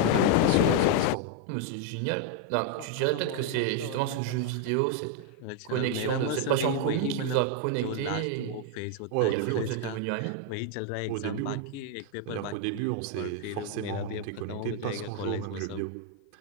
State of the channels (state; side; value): different; both; correlation 0.00